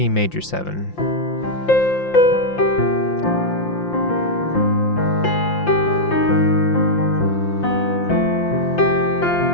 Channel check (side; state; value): right; late; 5.8 ms